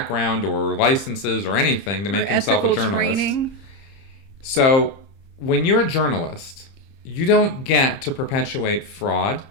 or licenses or anything to make himself a journalist. Training. So when you're a journalist, you don't get to perpetuate fraud,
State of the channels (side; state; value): right; late; 30 ms